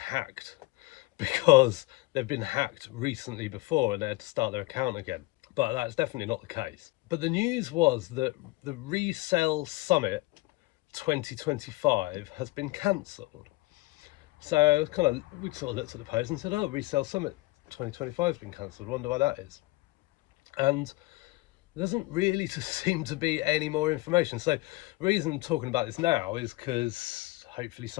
because they've been hacked recently before and they had to start their account again. But that's definitely not the case. But the news was that the RESELL Summit 2025 has been cancelled. So we sort of looked at the post and said, oh, RESELL Summit 2025 has been cancelled. Wonder why that is. And there doesn't really seem to be any more information. So the reason I'm talking about this now is because hopefully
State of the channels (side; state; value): right; quieter; 21.0 dB